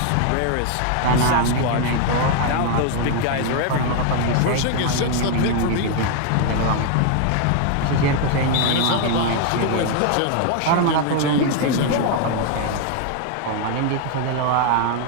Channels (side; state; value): both; different; correlation 0.00